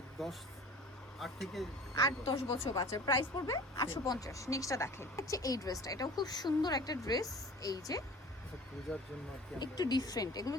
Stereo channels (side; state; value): both; normal; correlation 0.43